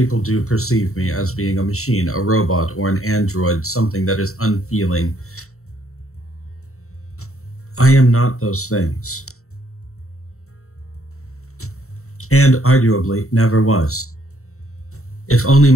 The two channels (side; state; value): right; late; 0.64 ms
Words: do perceive me as being a machine, a robot, or an android, something that is unfeeling. I am not those things. And arguably never was. If only